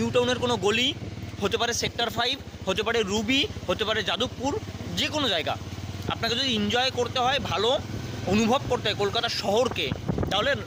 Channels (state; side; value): identical; both; correlation 1.00